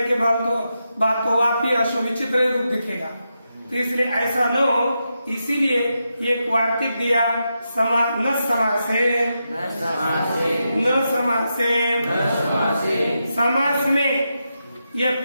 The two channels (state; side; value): inverted; both; correlation -0.86